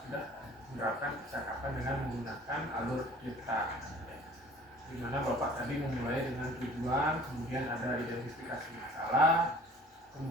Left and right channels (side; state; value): both; normal; correlation 0.49